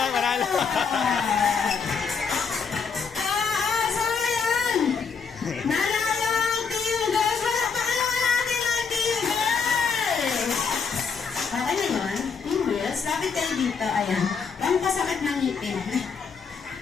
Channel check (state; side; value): quieter; right; 5.7 dB